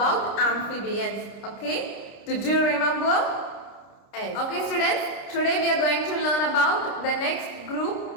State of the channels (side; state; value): right; late; 30 ms